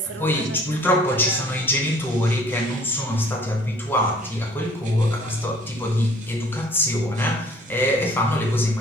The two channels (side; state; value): both; normal; correlation 0.54